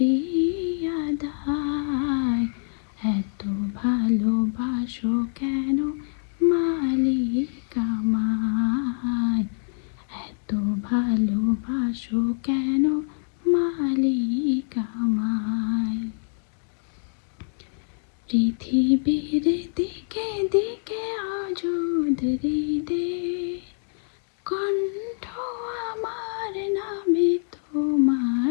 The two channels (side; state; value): right; silent; 61 dB below the other